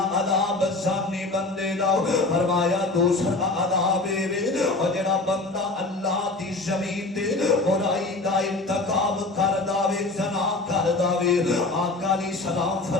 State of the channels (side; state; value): right; quieter; 3.2 dB